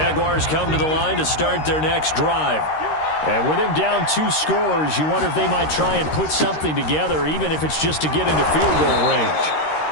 come to the line to start their next drive. And with him down 2 scores, you wonder if they might try and put something together, even if it's just to get into field goal range.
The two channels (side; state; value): right; late; 13 ms